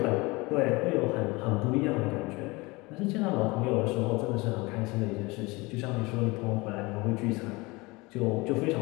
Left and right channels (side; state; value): right; quieter; 24.0 dB